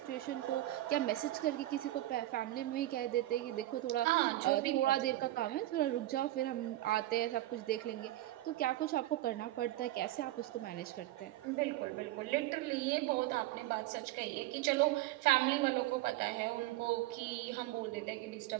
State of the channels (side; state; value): left; quieter; 15.9 dB